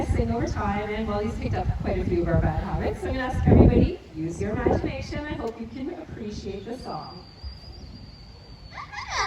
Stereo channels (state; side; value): identical; both; correlation 1.00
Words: sing over time, and well, he's picked up quite a few of our bad habits. So I'm going to ask everybody, use your imagination. I hope you can appreciate the song.